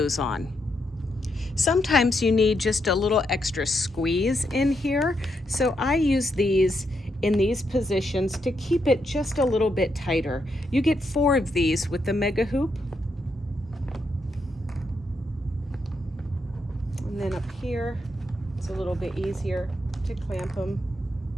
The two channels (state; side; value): normal; both; correlation 0.80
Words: on. Sometimes you need just a little extra squeeze in here. So I use these in these positions to keep it just a little bit tighter. You get 4 of these with the mega hoop. And then up here, it's a little bit easier to clamp them.